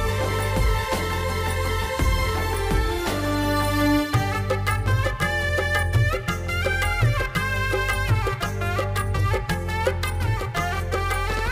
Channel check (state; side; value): identical; both; correlation 1.00